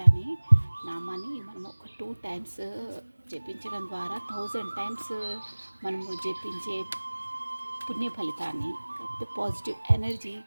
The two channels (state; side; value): inverted; both; correlation -1.00